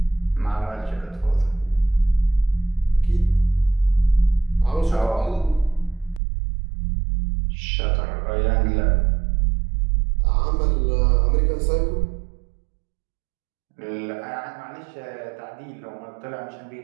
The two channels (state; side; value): drops out; left; at 6.2 s